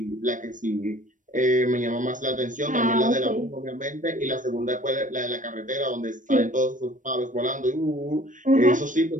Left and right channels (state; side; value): late; left; 0.37 ms